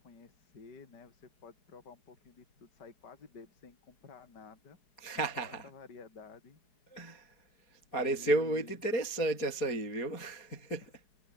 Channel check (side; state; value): right; late; 4.7 ms